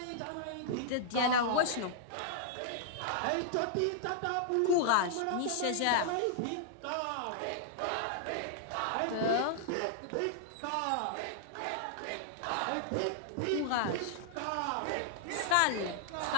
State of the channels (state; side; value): different; both; correlation -0.01